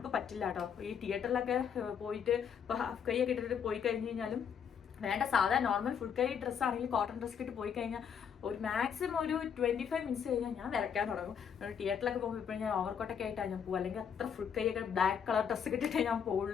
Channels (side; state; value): right; quieter; 7.5 dB